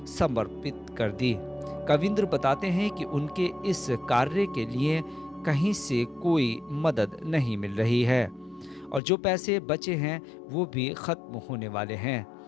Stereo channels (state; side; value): drops out; right; at 9.0 s